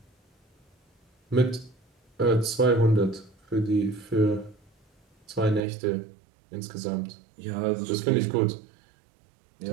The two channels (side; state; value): left; drops out; at 5.6 s